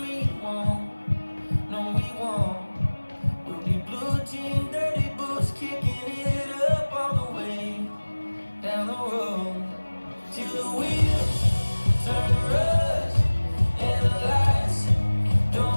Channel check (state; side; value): inverted; both; correlation -1.00